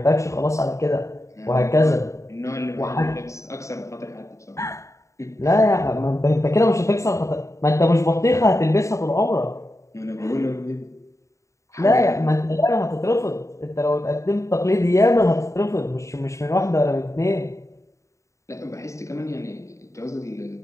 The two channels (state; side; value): late; right; 0.15 ms